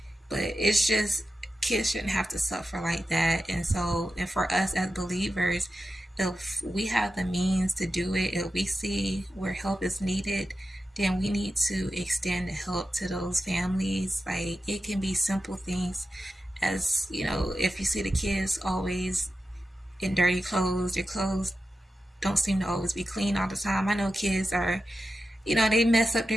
but it's just kids shouldn't have to suffer like that. And so, and for us as believers, if we have the means to do it, if we see where help is needed, then we need to extend the help to those families. Like, it can be simple things as, if you see the kids always in dirty clothes, their clothes don't seem to always be clean all the time. I know kids are, they mess up their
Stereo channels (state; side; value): normal; both; correlation 0.91